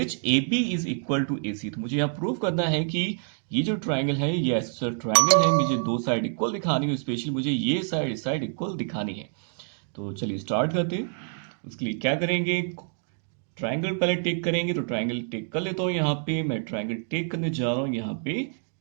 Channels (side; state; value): left; silent; 59 dB below the other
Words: AB is equal to AC। तो मुझे यहाँ प्रूव करना है कि ये जो ट्राइंगल है ये आइसोसेलर ट्राइंगल है, मुझे दो साइड इक्वल दिखानी है, स्पेशली मुझे ये साइड इस साइड इक्वल दिखानी है। तो चलिए स्टार्ट करते हैं। उसके लिए क्या करेंगे, ट्राइंगल पहले टेक करेंगे। तो ट्राइंगल टेक कर लेता हूँ, यहाँ पे मैं ट्राइंगल टेक करने जा रहा हूँ, यहाँ पे